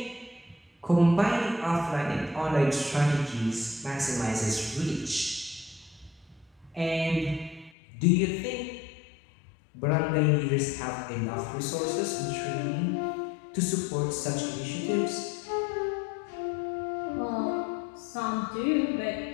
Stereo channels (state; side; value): drops out; right; at 7.7 s